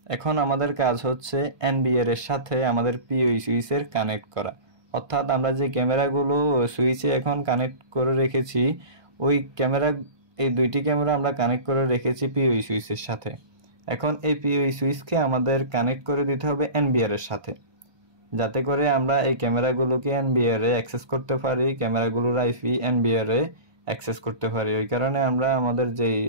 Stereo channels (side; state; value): left; late; 1.2 ms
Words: এখন আমাদের কাজ হচ্ছে এনবিআর এর সাথে আমাদের পিওই সুইচের কানেক্ট করা, অর্থাৎ আমরা যে ক্যামেরাগুলো সুইচে এখন কানেক্ট করে রেখেছি ওই ক্যামেরা, এই দুইটি ক্যামেরা আমরা কানেক্ট করে রেখেছি পিওই সুইচের সাথে। এখন এই পিওই সুইচকে আমাদের কানেক্ট করে দিতে হবে এনবিআর এর সাথে, যাতে করে আমরা এই ক্যামেরাগুলোকে এনবিআর এ অ্যাক্সেস করতে পারি, ক্যামেরাগুলোর আইপি এনবিআর এ অ্যাক্সেস করতে পারি। ওই কারণে আমরা আমাদের যেই